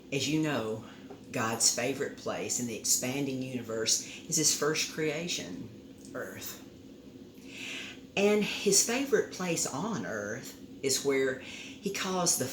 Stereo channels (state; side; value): identical; both; correlation 1.00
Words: as you know, God's favorite place in the expanding universe is his first creation, Earth. And his favorite place on Earth is where he caused the